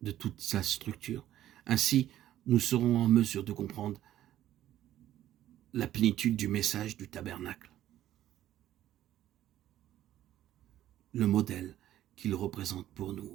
de toute sa structure. Ainsi, nous serons en mesure de comprendre la plénitude du message du tabernacle, le modèle qu'il représente pour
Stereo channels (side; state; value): left; quieter; 12.7 dB